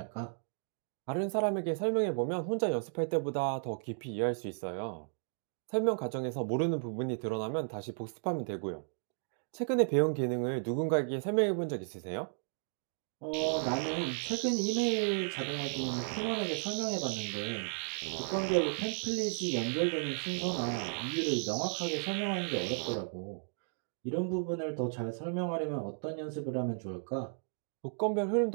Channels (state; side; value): silent; left; digital silence